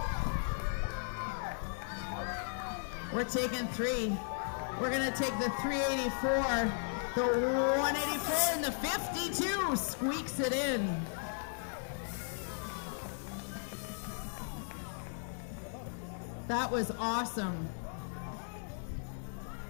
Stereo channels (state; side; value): silent; right; digital silence